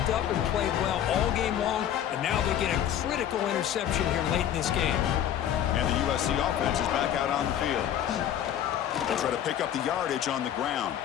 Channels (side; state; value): right; quieter; 10.5 dB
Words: up and played well all game long, and now they get a critical interception here late in this game. And the USC offense is back out on the field. They'll try to pick up the yardage on the ground.